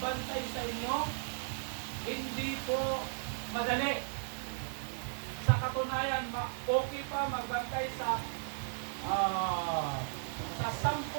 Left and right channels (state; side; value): silent; left; digital silence